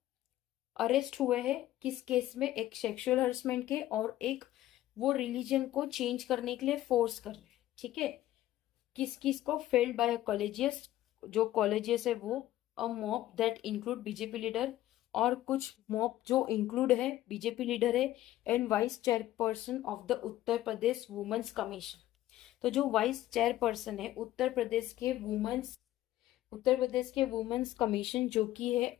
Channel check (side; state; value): right; quieter; 14.4 dB